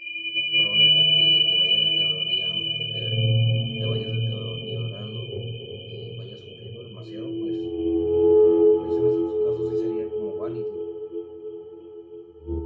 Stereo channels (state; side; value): identical; both; correlation 1.00